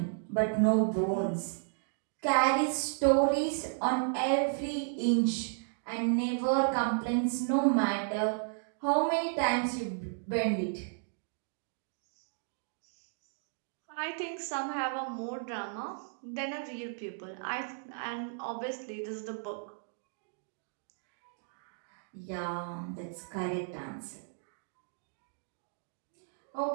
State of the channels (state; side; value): silent; left; digital silence